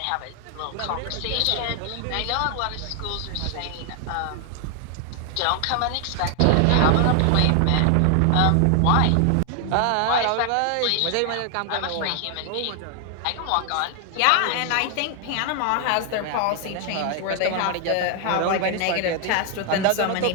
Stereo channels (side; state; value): both; different; correlation 0.00